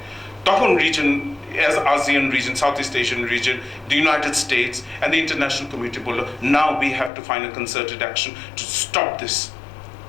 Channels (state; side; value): drops out; right; at 7.1 s